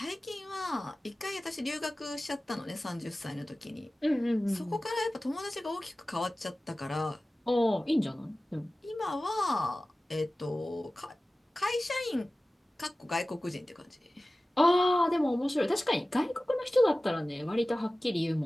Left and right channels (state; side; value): normal; both; correlation 0.97